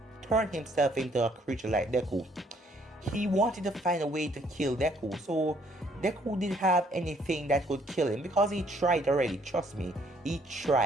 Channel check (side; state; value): both; normal; correlation 0.65